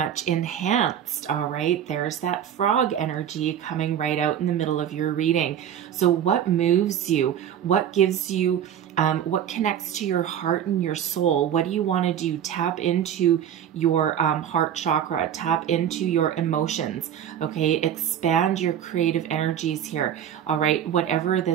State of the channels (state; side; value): quieter; left; 9.6 dB